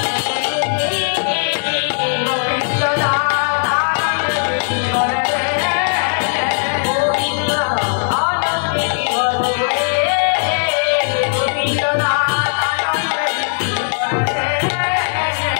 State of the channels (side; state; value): right; silent; 67 dB below the other